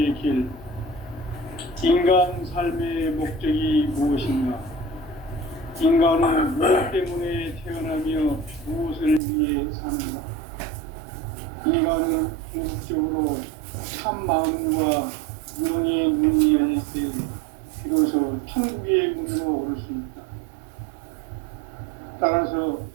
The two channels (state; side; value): drops out; left; at 9.2 s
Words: 길. 인간 삶의 목적이 무엇인가? 인간은 무엇 때문에 태어나며 무엇을 위해 사는가? 인간은 궁극적으로 참 마음과 영의 눈이 열릴 때 비로소 천국의 문으로 오를 수 있다. 따라서